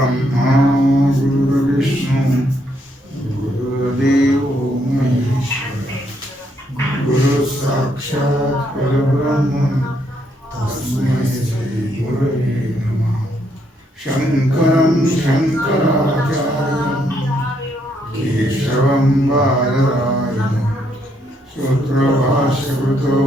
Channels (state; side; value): normal; both; correlation 0.74